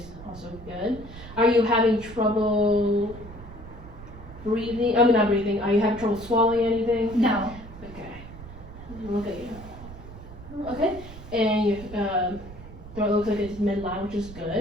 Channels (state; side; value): noise; right; rumble, 15 dB below the sound